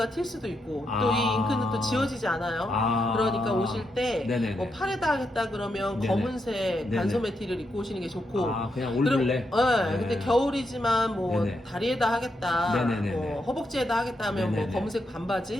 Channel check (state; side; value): normal; both; correlation 0.82